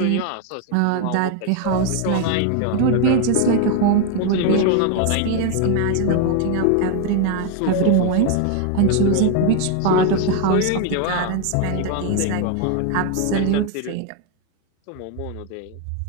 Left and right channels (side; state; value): both; different; correlation 0.01